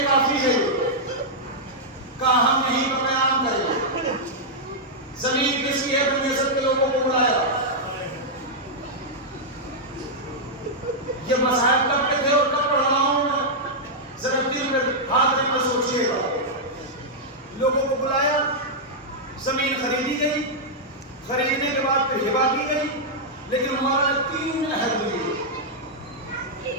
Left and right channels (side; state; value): both; normal; correlation -0.07